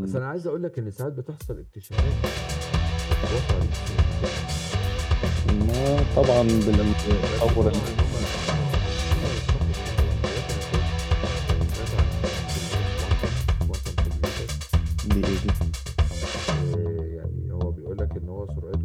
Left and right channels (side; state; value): both; identical; correlation 1.00